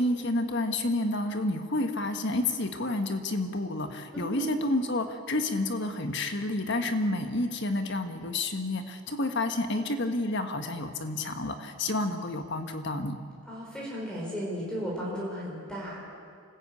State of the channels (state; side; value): normal; both; correlation 0.46